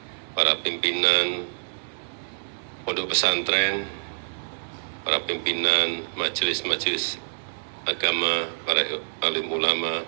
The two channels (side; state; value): left; silent; 55 dB below the other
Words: para pimpinan pondok pesantren, para pimpinan majelis-majelis agama, para alim ulama,